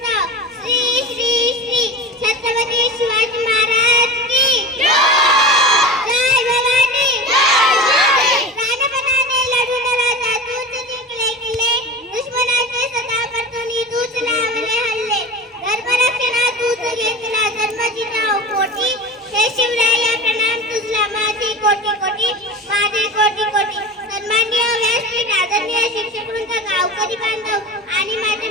श्री श्री श्री छत्रपती शिवाजी महाराज की जय भवानी प्राणपणाने लढून राजा तूच जिंकले किल्ले दुश्मनाचे सदा परतुनी तूच लावले हल्ले धर्मरक्षणा तूच घेतला धर्म जिजाऊ पोटी हे शिवराया प्रणाम तुझला माझे कोटी कोटी माझे कोटी कोटी सन्माननीय व्यासपीठ आदरणीय शिक्षक वृंद गावकरी बांधव आणि माझे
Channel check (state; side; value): normal; both; correlation 0.32